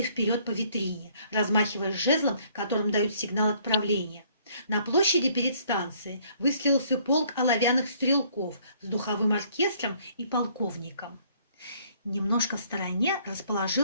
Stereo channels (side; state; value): both; inverted; correlation -0.62